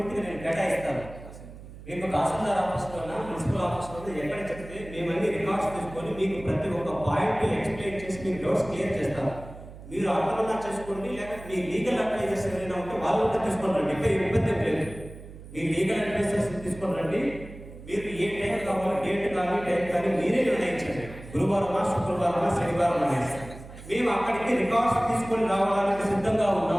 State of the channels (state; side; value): noise; right; hum, 16 dB below the sound